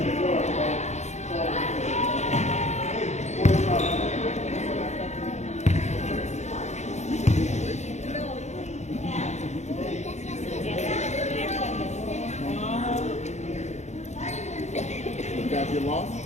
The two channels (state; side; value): late; right; 0.33 ms